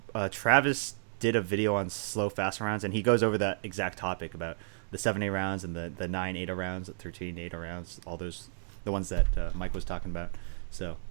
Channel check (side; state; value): left; silent; digital silence